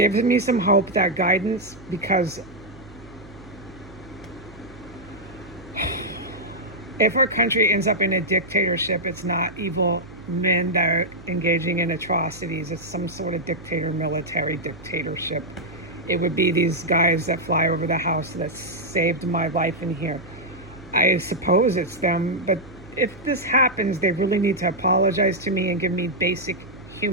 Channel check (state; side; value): noise; right; hum, 19 dB below the sound